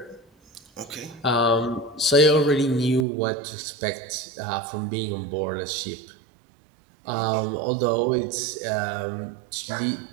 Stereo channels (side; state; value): left; drops out; at 3.1 s